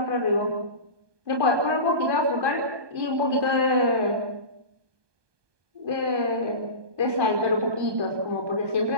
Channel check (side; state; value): left; late; 1.2 ms